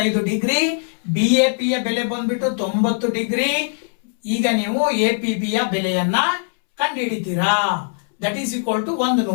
ಡಿಗ್ರಿ, BAP ಯ ಬೆಲೆ ಬಂದ್ಬಿಟ್ಟು 90 ಡಿಗ್ರಿ. ಈಗ ನೀವು APB ಯ ಬೆಲೆಯನ್ನ ಕಂಡುಹಿಡಿತೀರಾ. That is equal to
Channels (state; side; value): silent; right; 65 dB below the other